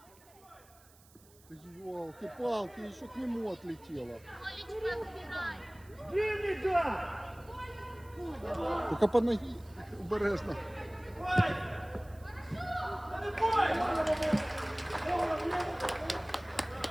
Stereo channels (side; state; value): right; noise; hiss, 26 dB below the sound